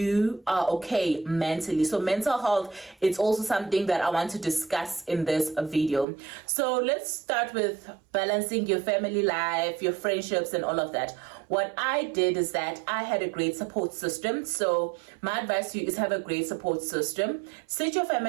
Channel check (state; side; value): drops out; left; at 6.1 s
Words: are okay mentally. So mental health is also something that I want to discuss in this video. So let's start with balancing your family life, your friendships, and all of that. What I did is that I had a great support system. So my advice to you is have a great support system. Sit your